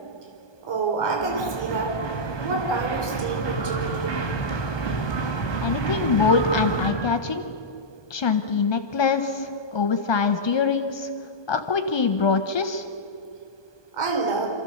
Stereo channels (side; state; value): right; late; 1.2 ms